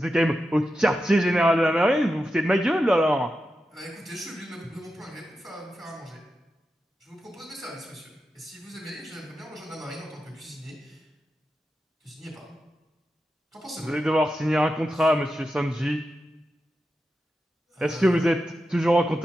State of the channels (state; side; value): normal; both; correlation 0.89